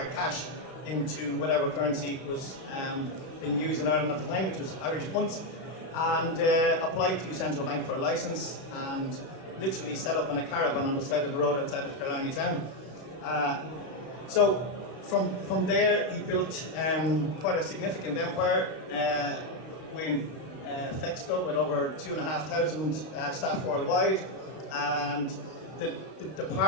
cash into whatever currency was being used in Ireland at the time, which was Irish punts, and applied to Central Bank for a licence and literally set up in a caravan on the side of the road outside of Killarney town. So from there he built quite a significant empire with FEXCO, with over 2,500 staff worldwide, and the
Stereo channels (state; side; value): late; right; 32 ms